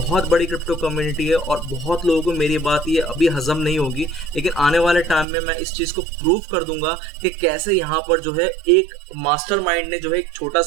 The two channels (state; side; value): drops out; left; at 5.2 s